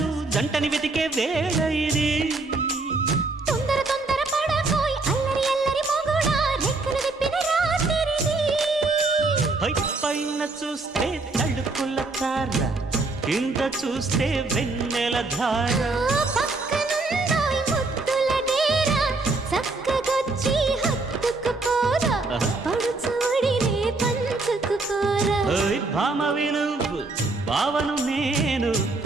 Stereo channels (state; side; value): quieter; left; 3.4 dB